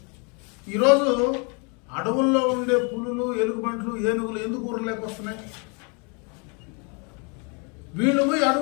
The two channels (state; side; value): quieter; right; 34.4 dB